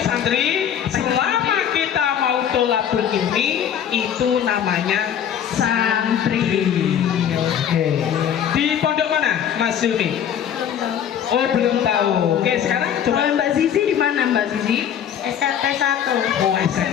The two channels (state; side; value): quieter; right; 9.2 dB